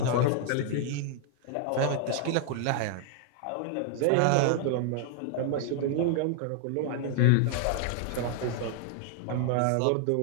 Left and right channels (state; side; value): different; both; correlation 0.00